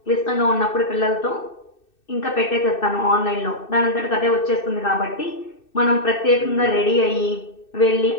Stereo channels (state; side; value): late; right; 2.6 ms